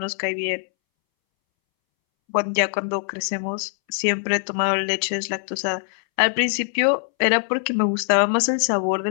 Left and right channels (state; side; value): silent; right; 64 dB below the other